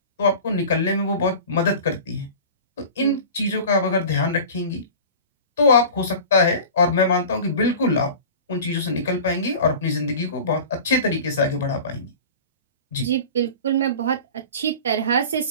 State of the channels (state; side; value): inverted; both; correlation -0.38